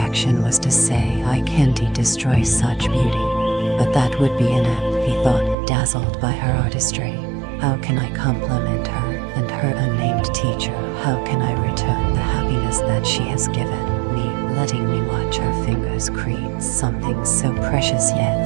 was to say, I can't destroy such beauty. But that would be inept, he thought, dazzled by her artistry. How can I compliment her and her unnamed teacher? How can I return the happiness that she has given me, letting me watch her fingers create something so precious yet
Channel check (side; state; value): left; drops out; at 5.6 s